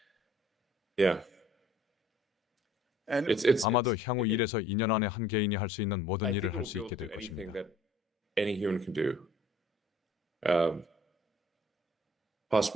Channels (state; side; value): normal; both; correlation 0.55